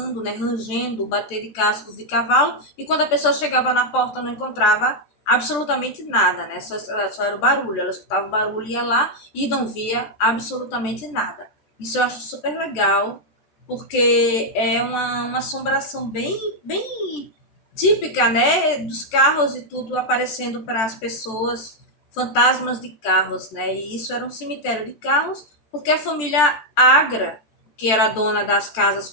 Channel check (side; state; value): right; late; 14 ms